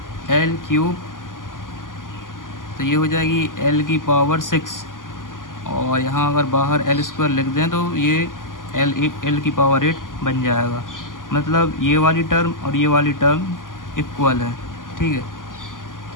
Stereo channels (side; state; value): right; late; 0.89 ms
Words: L cube, तो ये हो जाएगी L की पावर 6, और यहाँ अगर बाहर L स्क्वायर लिख दें तो ये L की पावर 8 बन जाएगा। मतलब ये वाली टर्म और ये वाली टर्म इक्वल है। ठीक है,